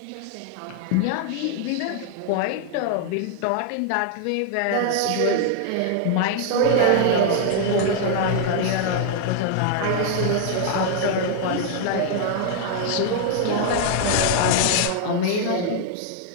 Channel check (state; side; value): different; both; correlation 0.00